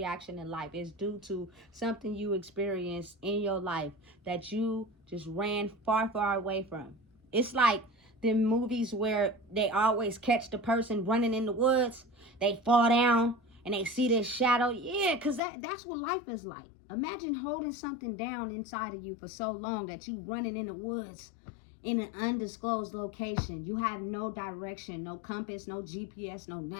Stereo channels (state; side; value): drops out; right; at 15.4 s